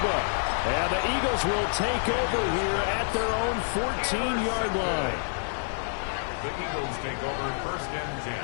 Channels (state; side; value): silent; right; digital silence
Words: And the Eagles will take over here at their own 14-yard line. The Eagles take over 1st and 10